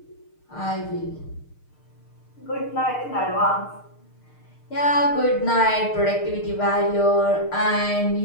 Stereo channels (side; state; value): right; late; 6.5 ms